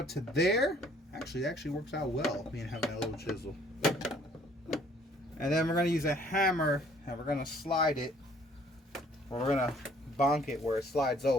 to there. Actually, it actually works out well, me and having that little chisel. And then we're gonna use a hammer and we're gonna slide it, or we're gonna bonk it where it slides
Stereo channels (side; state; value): both; normal; correlation 0.59